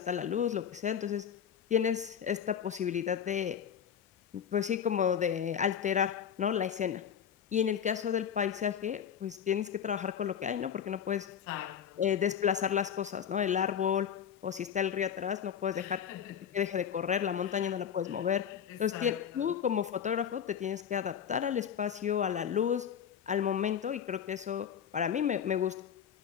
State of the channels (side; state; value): right; quieter; 8.3 dB